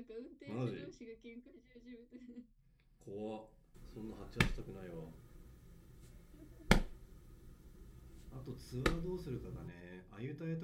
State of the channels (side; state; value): both; identical; correlation 1.00